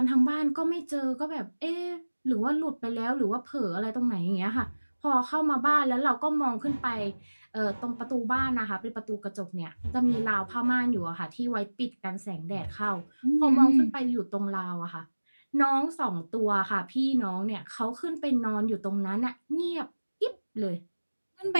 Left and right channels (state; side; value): inverted; both; correlation -1.00